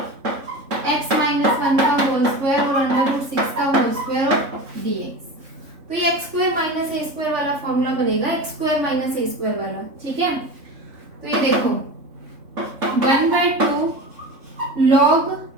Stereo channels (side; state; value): left; late; 3.6 ms